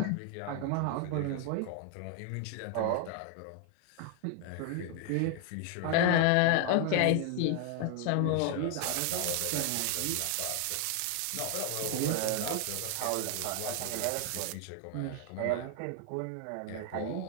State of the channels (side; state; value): both; different; correlation 0.00